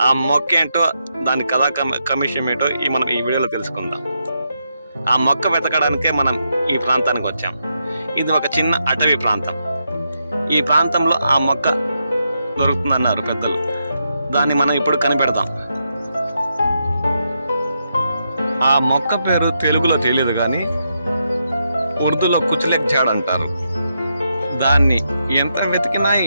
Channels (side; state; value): both; inverted; correlation -0.82